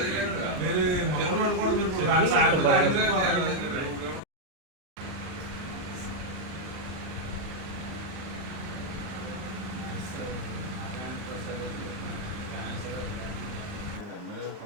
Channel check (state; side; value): late; left; 39 ms